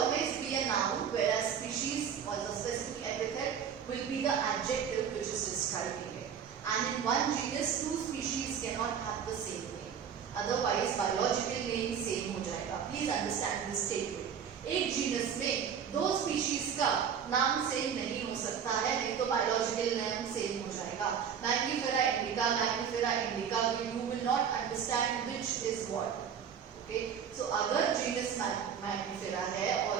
be a noun, whereas species or the specific epithet will be the adjective which is describing it. And in one genus, 2 species cannot have the same name. Otherwise, biological name same हो जाएगा. Please understand this statement. एक genus में 2 species का नाम same नहीं हो सकता है, नहीं तो बायोलॉजिकल नेम सेम हो जाएगा. Mangifera indica, you will not understand which is what. Okay, so अगर जीनस मैग्निफेरा है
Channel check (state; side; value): quieter; left; 7.7 dB